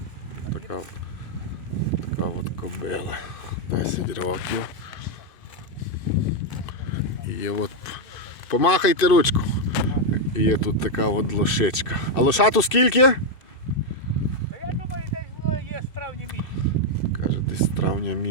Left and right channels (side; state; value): right; late; 2.6 ms